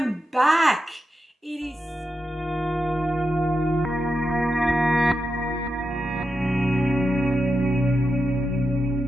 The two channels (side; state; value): both; normal; correlation 0.88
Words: back. It is